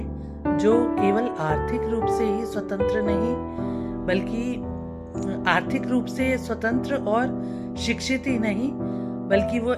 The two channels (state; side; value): identical; both; correlation 1.00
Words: जो केवल आर्थिक रूप से ही स्वतंत्र नहीं बल्कि आर्थिक रूप से स्वतंत्र और शिक्षित ही नहीं बल्कि वो